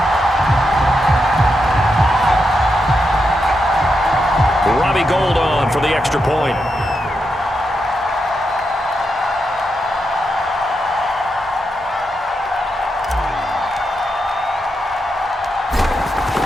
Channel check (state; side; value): normal; both; correlation 0.85